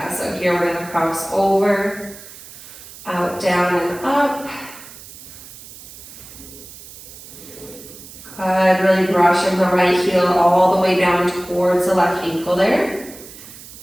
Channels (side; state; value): right; noise; hiss, 17 dB below the sound